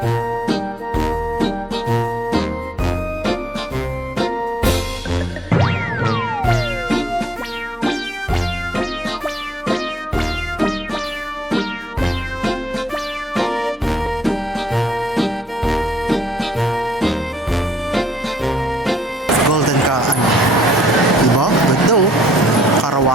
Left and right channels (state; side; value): normal; both; correlation 0.68